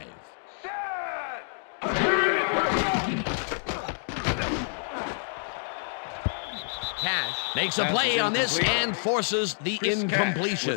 Cash makes a play on this and forces the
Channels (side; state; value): right; silent; digital silence